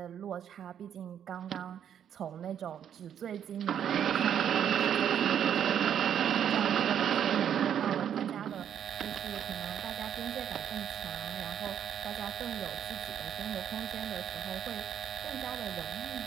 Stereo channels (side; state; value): left; quieter; 9.2 dB